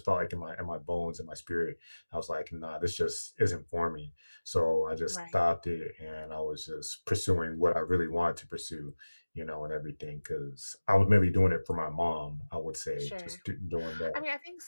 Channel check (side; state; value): both; inverted; correlation -1.00